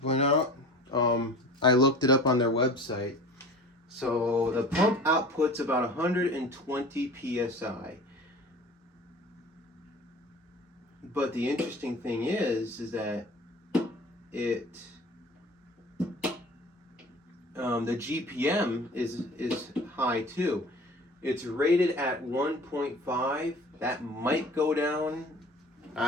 point out. I looked it up on their website. So the pump outputs about 120 psi. But the interesting thing is that it the GPM is high too. It's rated at 1.5. That might go down.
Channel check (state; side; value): normal; both; correlation 0.41